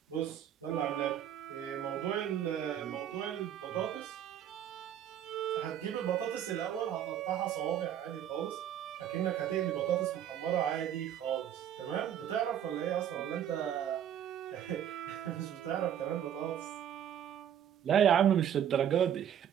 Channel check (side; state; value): left; quieter; 9.9 dB